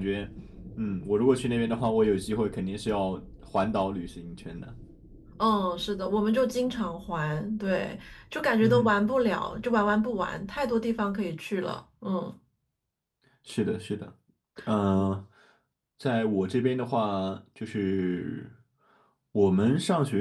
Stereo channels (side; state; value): both; identical; correlation 1.00